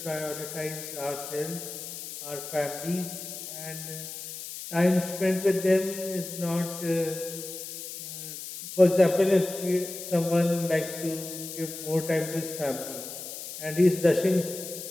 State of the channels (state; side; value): noise; left; hiss, 9 dB below the sound